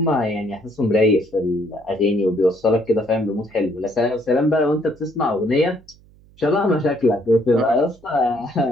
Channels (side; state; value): right; noise; hum, 27 dB below the sound